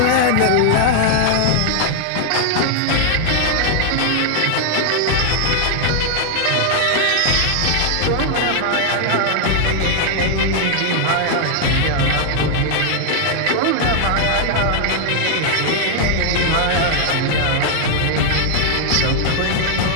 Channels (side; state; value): both; different; correlation 0.00